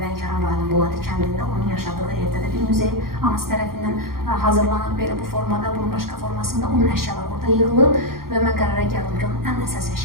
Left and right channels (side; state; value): left; late; 0.93 ms